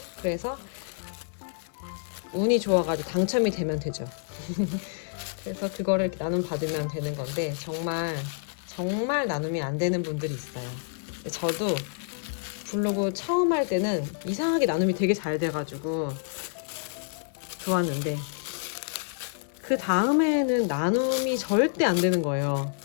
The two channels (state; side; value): silent; right; digital silence